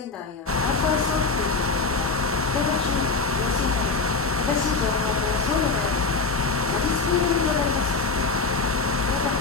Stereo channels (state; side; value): quieter; right; 4.1 dB